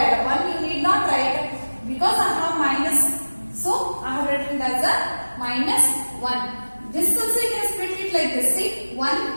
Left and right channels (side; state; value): both; inverted; correlation -1.00